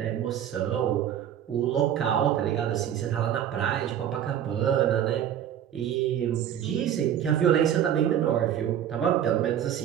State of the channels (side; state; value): left; quieter; 10.1 dB